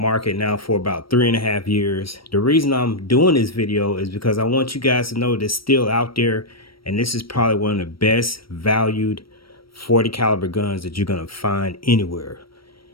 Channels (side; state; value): right; late; 0.75 ms